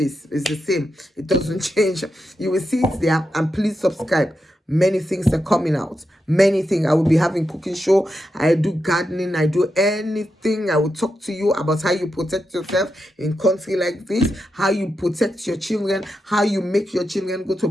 It's the same. It doesn't change. You will see it there, and please subscribe. Many things are coming out. Many things. I will be having cooking show. I do gardening. I do anything. I will talk to you about how you protect yourself in country like this, how you protect your children, how you make your children go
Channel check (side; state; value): both; normal; correlation 0.87